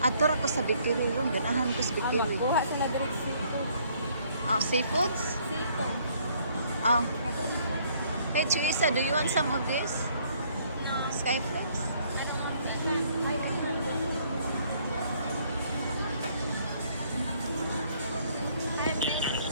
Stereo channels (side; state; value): both; inverted; correlation -0.64